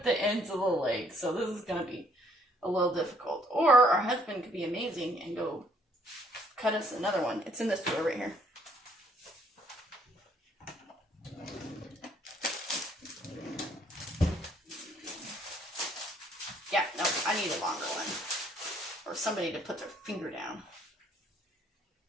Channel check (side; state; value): both; normal; correlation 0.65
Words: the ends of the legs, so this is going to be a little difficult. Or our husband could be amazing and go cut us another one. It's in this drawer right here. Yeah, no, I need a longer one. Or somebody to put their finger down.